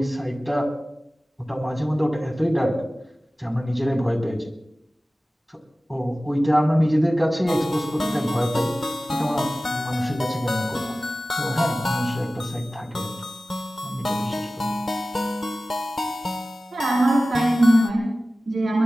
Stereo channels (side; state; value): both; normal; correlation 0.96